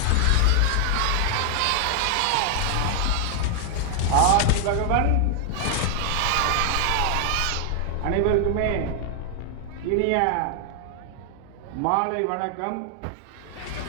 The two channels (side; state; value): both; different; correlation 0.00